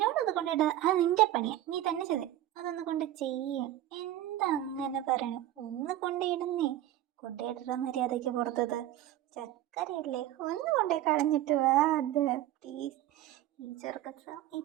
അത് കൊണ്ടിട, അത് നിന്റെ പണിയാ, നീ തന്നെ ചെയ്തേ. അതൊന്ന് കൊണ്ട് ചെയ്യ. എന്താ അങ്ങനെ പറയണേ? ഒന്ന് കൊണ്ടിടുന്നേ. കൊണ്ടിട മര്യാദയ്ക്ക് പുറത്തത്. ചക്കരയല്ലേ, ഒന്ന് കൊണ്ടേ കളഞ്ഞിട്ട് വാ. അത് പ്ലീസ്. ഈ ചെറുക്കച്ച ഈ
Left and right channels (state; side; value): quieter; left; 13.4 dB